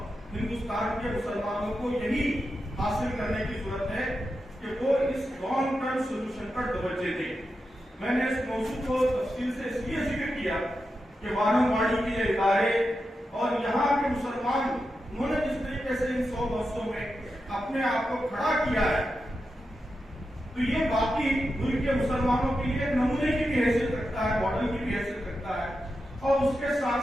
ہندوستان کے مسلمانوں کو یہی حاصل کرنے کی ضرورت ہے کہ وہ اس لانگ ٹرم سولوشن پر توجہ دیں۔ میں نے اس موضوع کو تفصیل سے اس لیے ذکر کیا کہ وانم واڑی کے یہ ادارے اور یہاں کے مسلمان، انہوں نے جس طریقے سے ان 100 برسوں میں اپنے آپ کو کھڑا کیا ہے، تو یہ باقی ملک کے مسلمانوں کے لیے نمونے کی بھی حیثیت رکھتا ہے، ماڈل کی بھی حیثیت رکھتا ہے، اور اس کے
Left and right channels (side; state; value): both; normal; correlation 0.89